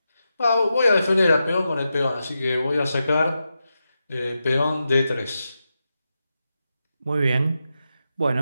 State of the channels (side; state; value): both; inverted; correlation -0.89